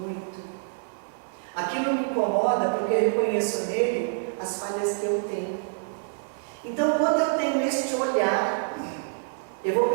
Aquilo me incomoda porque eu reconheço nele as falhas que eu tenho. Então, quando eu tenho este olhar, eu vou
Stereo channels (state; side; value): silent; left; digital silence